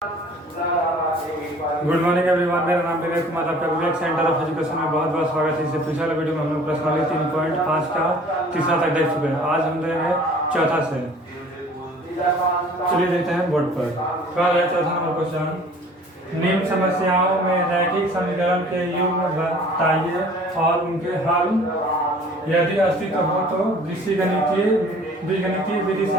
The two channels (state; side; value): normal; both; correlation 0.50